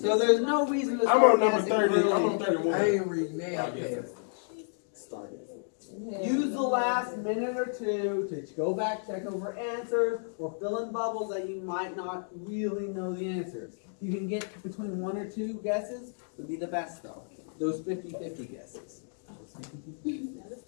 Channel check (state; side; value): silent; right; digital silence